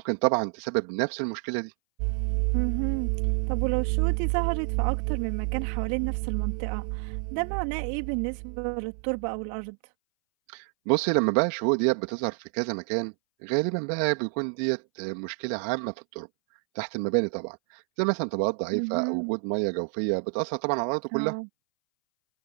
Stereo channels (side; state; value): left; silent; 59 dB below the other